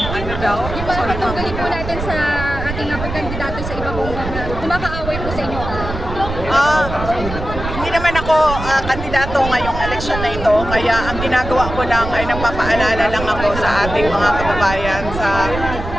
Ano daw? Yung mga katunggali po natin sa ating mga kandidato sa iba pong kumakaaway po sa inyo. Hindi naman ako kandidato ngayong eleksyon na ito, kaya ang ginagawa ko lang ay nagpapaalala lang ako sa ating mga kababayan sa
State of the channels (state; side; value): noise; right; rumble, 7 dB below the sound